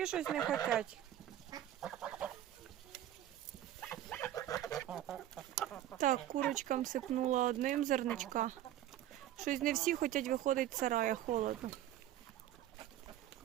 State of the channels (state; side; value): quieter; left; 12.4 dB